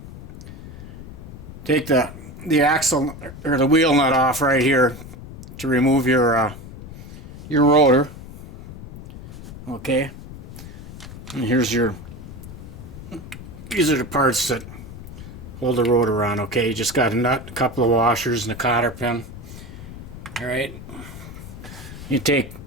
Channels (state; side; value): noise; left; rumble, 13 dB below the sound